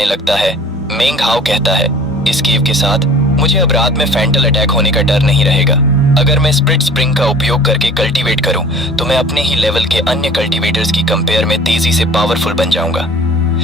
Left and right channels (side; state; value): both; normal; correlation 0.46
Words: लगता है। मेंगहाओ कहता है, इस केव के साथ मुझे अब रात में फैंटल अटैक होने का डर नहीं रहेगा। अगर मैं स्प्लिट स्प्रिंग का उपयोग करके कल्टीवेट करूं तो मैं अपने ही लेवल के अन्य कल्टीवेटर्स की कंपेयर में तेजी से पावरफुल बन जाऊंगा।